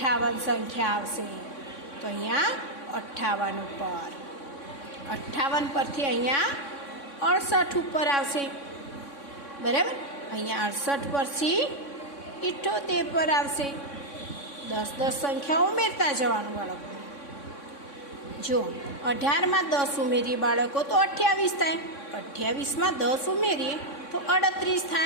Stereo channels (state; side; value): late; right; 3.6 ms